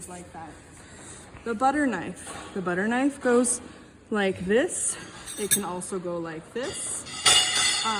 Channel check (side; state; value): both; identical; correlation 1.00